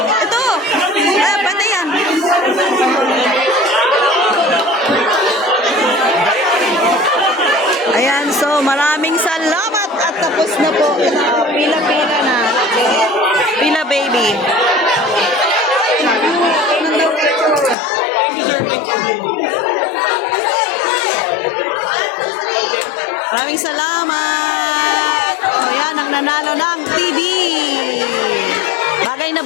Ito. Pwede yan. Ayan, so maraming salamat at tapos na po. Pila-pila na. Pila baby. Maraming salamat. O yan, ang nanalo ng TV. Bagay na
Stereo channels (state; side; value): drops out; right; at 17.8 s